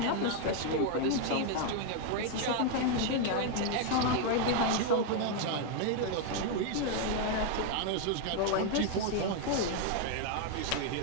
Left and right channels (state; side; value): different; both; correlation 0.00